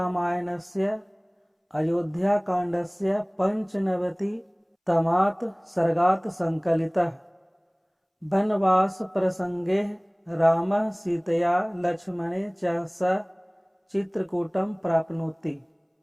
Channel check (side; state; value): both; identical; correlation 1.00